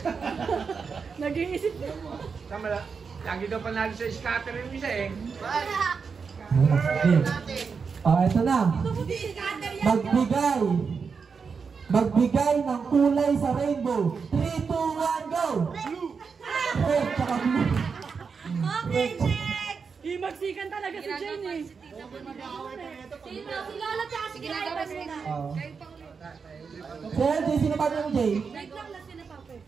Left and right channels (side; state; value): left; quieter; 5.5 dB